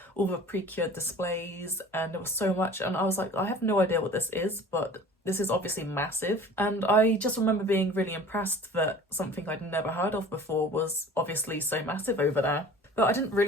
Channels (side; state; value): both; normal; correlation 0.44